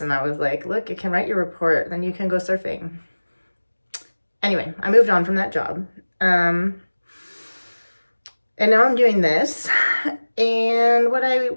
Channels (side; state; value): both; inverted; correlation -1.00